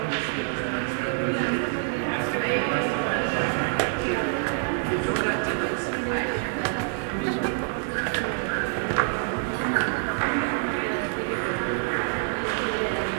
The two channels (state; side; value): silent; left; 61 dB below the other